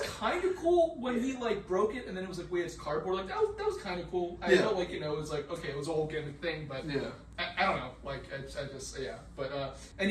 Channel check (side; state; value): both; identical; correlation 1.00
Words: kind of cool when he, like, broke it, and then it was like, wait, it's cardboard. Like, that was kind of cool. I felt like, you know, it was like, okay, it was a whole gimmick thing, but Yeah. I don't know. Like, I just, yeah. But, and